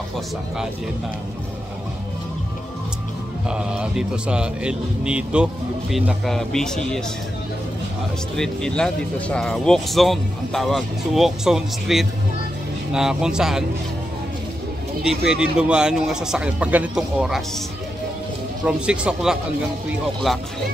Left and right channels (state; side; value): normal; both; correlation 0.87